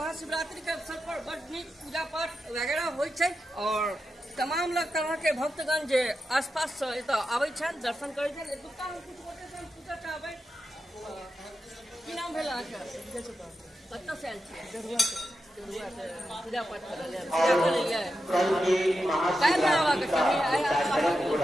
के अवसर पर बड़ नीक पूजा पाठ वगैरह होइ छै और तमाम लोग तरह के भक्तगण जे आसपास से एतऽ आबै छथि, दर्शन करै छथि। एतुका हम किछु गोटे से पूछऽ चाहबै, की नाम भेल अहाँके? कतऽ से आयल छियै? देरुआ से पूजा पाठ करऽ लेल काल्हि आबऽ के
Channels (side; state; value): both; normal; correlation 0.89